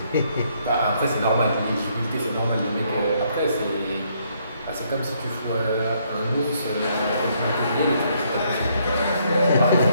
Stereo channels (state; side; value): inverted; both; correlation -0.70